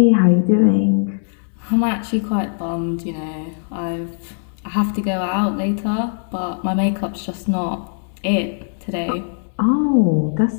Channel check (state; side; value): silent; right; digital silence